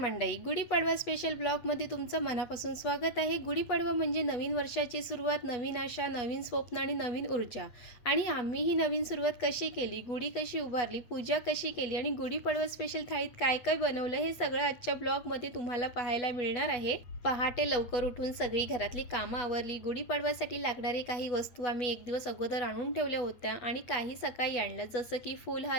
गुढीपाडवा स्पेशल ब्लॉगमध्ये तुमचं मनापासून स्वागत आहे। गुढीपाडवा म्हणजे नवीन वर्षाची सुरुवात, नवीन आशा, नवीन स्वप्न आणि नवीन ऊर्जा। आणि आम्ही ही नवीन सुरुवात कशी केली, गुढी कशी उभारली, पूजा कशी केली आणि गुढीपाडवा स्पेशल थाळीत काय काय बनवलं हे सगळं आजच्या ब्लॉगमध्ये तुम्हाला पाहायला मिळणार आहे। पहाटे लवकर उठून सगळी घरातली कामं आवरली। गुढीपाडव्यासाठी लागणारी काही वस्तू आम्ही एक दिवस अगोदर आणून ठेवल्या होत्या आणि काही सकाळी आणल्या, जसं की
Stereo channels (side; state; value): right; late; 8.2 ms